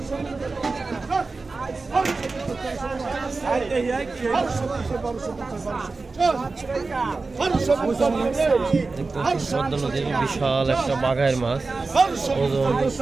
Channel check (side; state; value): left; quieter; 3.9 dB